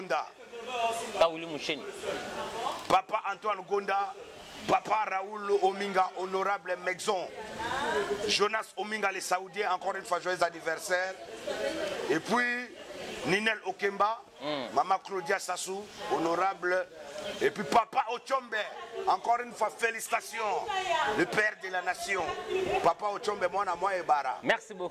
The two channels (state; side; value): identical; both; correlation 1.00